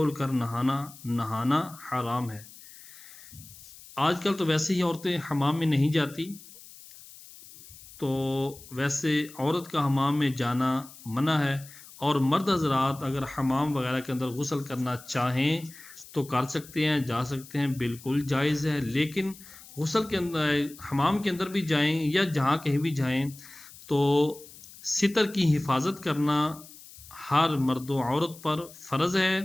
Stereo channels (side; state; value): left; noise; hiss, 19 dB below the sound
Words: کر نہانا حرام ہے۔ آج کل تو ویسے ہی عورتیں حمام میں نہیں جاتی، تو ویسے عورت کا حمام میں جانا منع ہے، اور مرد حضرات اگر حمام وغیرہ کے اندر غسل کرنا چاہیں تو کر سکتے ہیں، جا سکتے ہیں، بالکل جائز ہے۔ لیکن غسل کے اندر حمام کے اندر بھی جائیں یا جہاں کہیں بھی جائیں تو ستر کی حفاظت کرنا ہر مرد و عورت پر فرض ہے۔